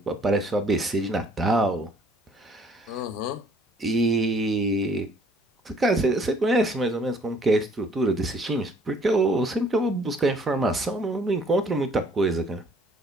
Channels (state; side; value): normal; both; correlation 0.59